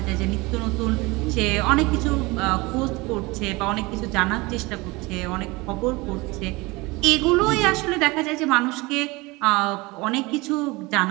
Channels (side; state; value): left; quieter; 23.5 dB